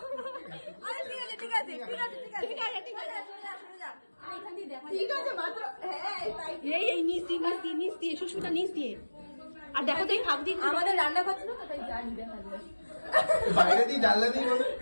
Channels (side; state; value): both; inverted; correlation -1.00